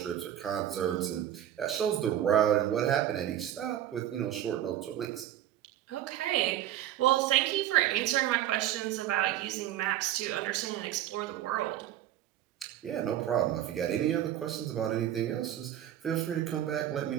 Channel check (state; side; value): quieter; left; 11.9 dB